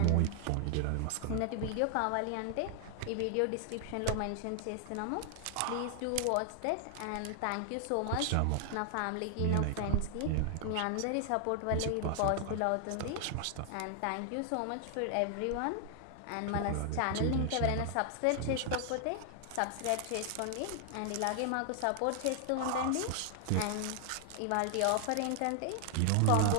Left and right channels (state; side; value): different; both; correlation 0.00